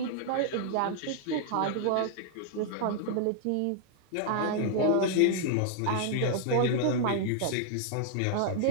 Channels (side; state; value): both; different; correlation 0.00